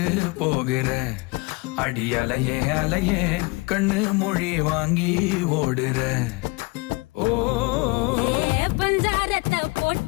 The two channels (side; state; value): right; quieter; 26.2 dB